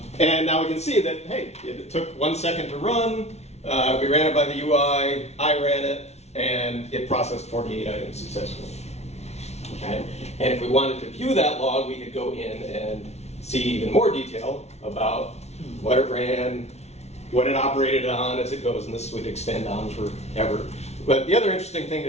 And now we can see that, hey, it took 1 second to run. We ran it by the UI. I ran it, and it processed 48 items successfully. Okay? And if we wanted to view that log, we could go in and see even more detail about what it ran, what it operated on as it goes, and this would extend on forever. But the other interesting thing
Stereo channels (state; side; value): late; right; 0.31 ms